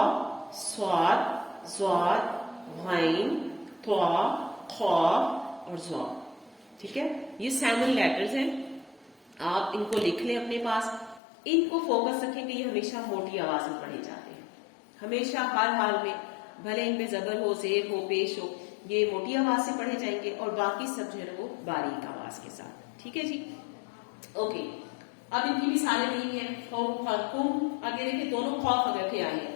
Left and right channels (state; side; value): drops out; right; at 11.2 s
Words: صاد ضاد غین طا خا اور ضا. ٹھیک ہے، یہ 7 لیٹرز ہیں. آپ ان کو لکھ لیں اپنے پاس. ان کو فوکس رکھیں کہ یہ ہمیشہ موٹی آواز میں پڑھے جاتے ہیں، ہمیشہ ہر حال میں، بھلے ان پہ زبر ہو، زیر ہو، پیش ہو، یہ موٹی آواز سے پڑھے جائیں گے اور باقی سب جو ہے وہ باریک آواز کے ساتھ. ٹھیک ہے جی، اوکے. اب ان کی مثالیں نہیں ہیں. خوف کم، آگے دیکھیں دونوں خوف رکھے آئے ہیں،